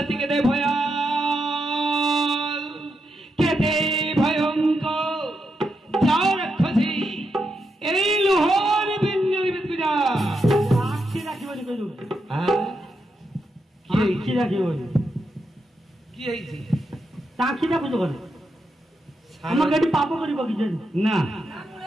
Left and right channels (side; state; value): both; normal; correlation 0.84